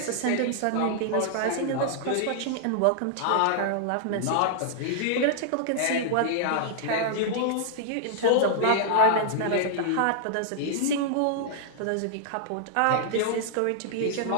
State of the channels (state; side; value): different; both; correlation -0.01